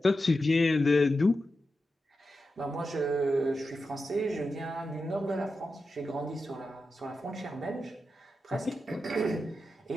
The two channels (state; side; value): normal; both; correlation 0.90